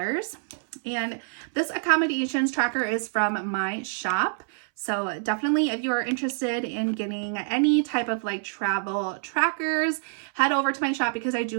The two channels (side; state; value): left; silent; 61 dB below the other